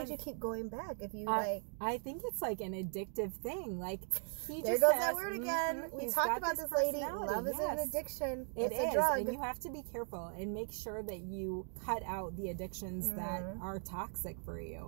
you keep going back? If you I think it's like an addictive thing. Like he there just goes has, that word again. We talked about this, lady. Love is an addiction. It's a drug. And you have to be careful and make sure that you cut out the addictions that are toxic for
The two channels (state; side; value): silent; left; 52 dB below the other